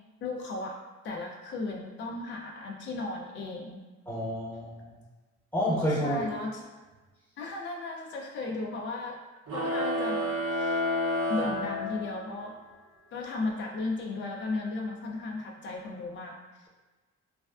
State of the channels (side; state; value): both; normal; correlation 0.31